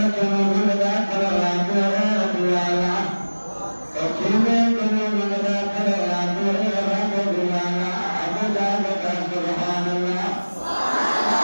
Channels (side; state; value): both; inverted; correlation -1.00